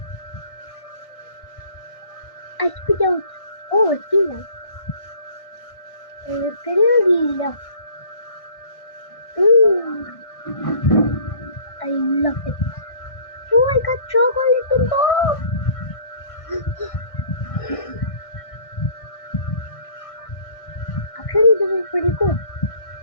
I spit out. Oh, it's Gila. Gila. I love it. Oh, I got chocolate in both. Actually, this is pretty cool.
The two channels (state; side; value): late; right; 1.6 ms